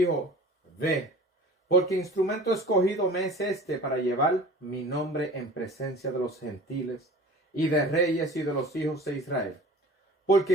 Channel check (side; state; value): both; normal; correlation 0.42